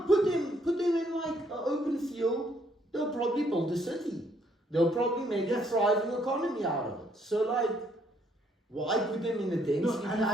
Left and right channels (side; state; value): both; normal; correlation 0.69